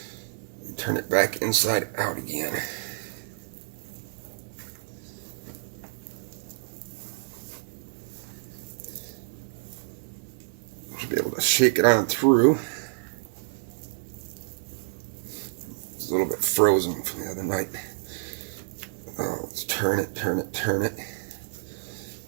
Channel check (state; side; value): silent; left; 59 dB below the other